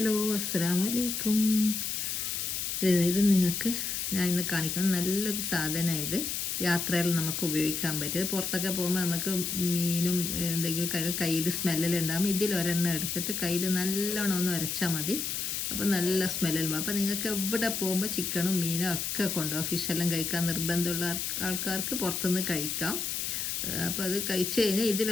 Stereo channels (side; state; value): left; noise; hiss, 2 dB below the sound